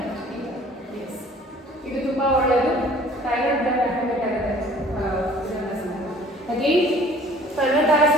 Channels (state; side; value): normal; both; correlation 0.52